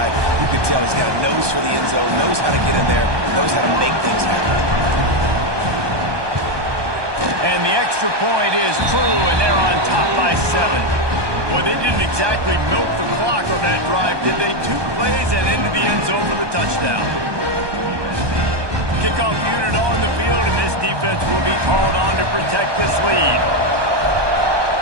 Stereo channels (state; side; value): late; left; 1.2 ms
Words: You can tell he's got a nose for the end zone, knows how to get in there, knows how to make things happen. And the extra point is true, and they're on top by 7. Boy, they didn't exactly milk the clock on that drive, did they? 2 plays and into the end zone for the touchdown. Kickoff unit on the field, and this defense will be called on to protect this lead.